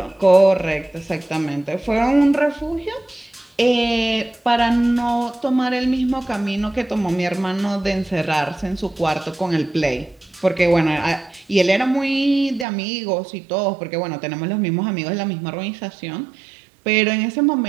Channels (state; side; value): drops out; left; at 12.7 s